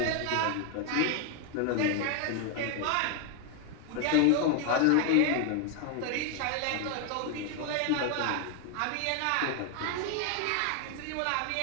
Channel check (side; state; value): both; different; correlation 0.01